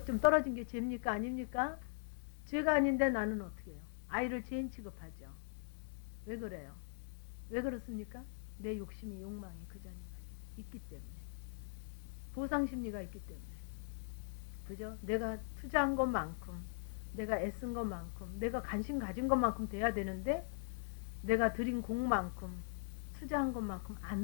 좀 떨어진 게 죄입니까? 아닙니까? 죄가 아닌데 나는 어떻게 해요? 아이를 죄인 취급하죠. 왜 그래요? 왜 그렇습니까? 내 욕심이 욕망이 그 자녀가 있기 때문에. 보상심리가 있기 때문에. 그죠? 내가 투자한 것만큼, 내가 애쓴 것만큼, 내가 관심 가진 것만큼 돼야 되는데, 내가 들인 공만큼, 투자한 것만큼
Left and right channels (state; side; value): silent; right; 51 dB below the other